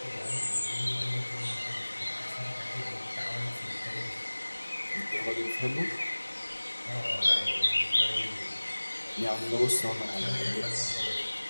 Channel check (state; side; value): inverted; both; correlation -1.00